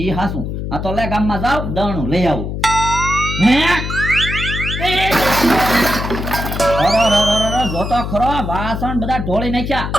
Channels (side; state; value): left; noise; hum, 4 dB below the sound